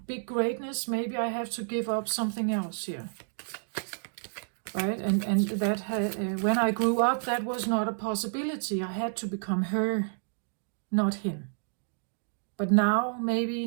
big greatness, maybe I have to give up something else here. Right? And that when I grew up, that was not a possibility. I had to become her, not him. But now,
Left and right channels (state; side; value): silent; left; digital silence